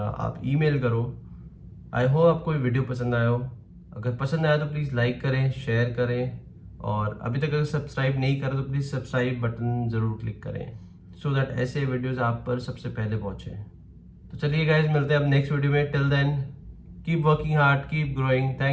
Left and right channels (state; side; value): identical; both; correlation 1.00